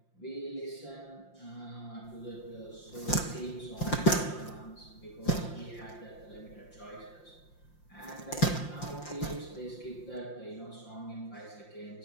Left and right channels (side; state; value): right; late; 5.7 ms